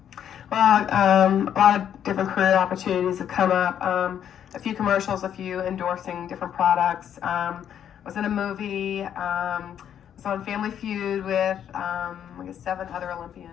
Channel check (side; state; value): right; quieter; 9.4 dB